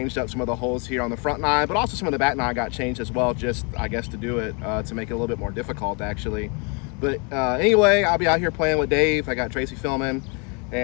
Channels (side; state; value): right; quieter; 33.5 dB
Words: up some of the holes here on the front nine, but also some of the back nine got changed as well, just I guess to do it, to make it a little bit more difficult actually. But anyway, I'll be out here playing with Dave. I got Tracy filming,